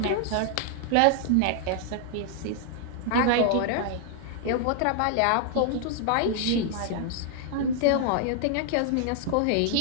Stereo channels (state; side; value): different; both; correlation 0.00